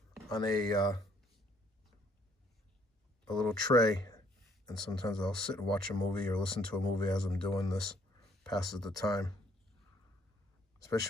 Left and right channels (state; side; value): normal; both; correlation 0.65